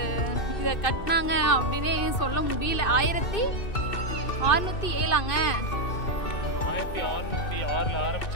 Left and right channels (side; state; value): right; late; 2.6 ms